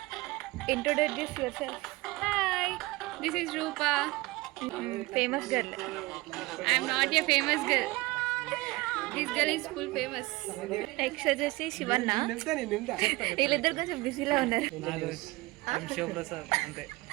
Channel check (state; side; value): quieter; left; 21.7 dB